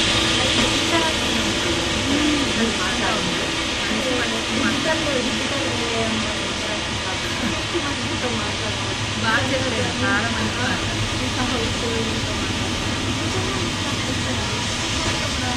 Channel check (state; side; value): identical; both; correlation 1.00